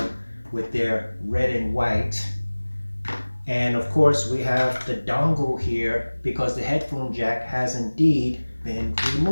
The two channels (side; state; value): both; inverted; correlation -1.00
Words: with their red and white. And of course, we have the dongle here because the headphone jack has indeed been